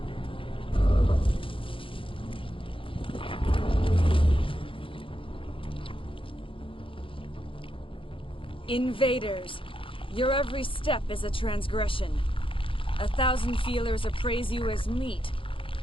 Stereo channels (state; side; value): late; right; 0.25 ms